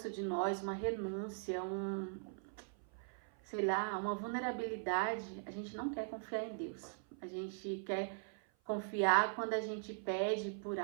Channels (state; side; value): silent; left; 51 dB below the other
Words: de nós, uma renúncia, sei lá, uma vulnerabilidade, a gente não quer confiar em Deus. A gente quer confiar quando a gente pede por